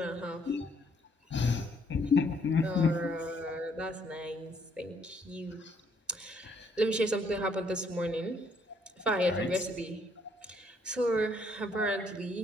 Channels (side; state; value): both; normal; correlation 0.68